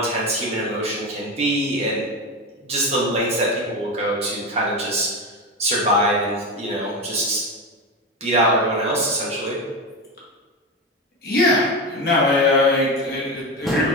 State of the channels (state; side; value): normal; both; correlation 0.18